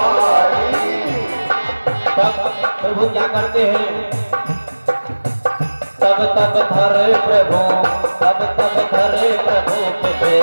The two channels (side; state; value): both; inverted; correlation -1.00